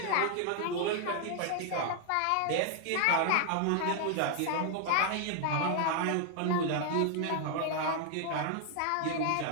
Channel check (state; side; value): different; both; correlation 0.00